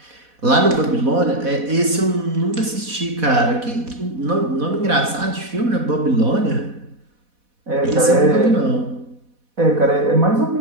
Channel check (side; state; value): left; late; 4.1 ms